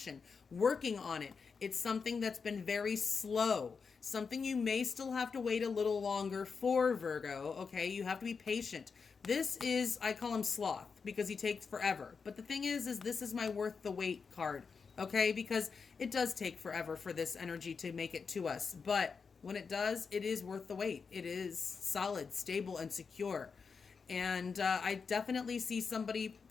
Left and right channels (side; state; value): right; quieter; 5.4 dB